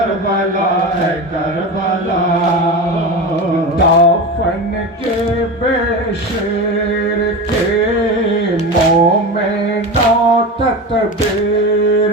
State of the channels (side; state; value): both; normal; correlation 0.25